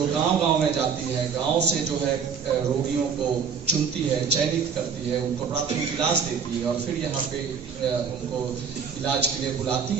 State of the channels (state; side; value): quieter; left; 6.4 dB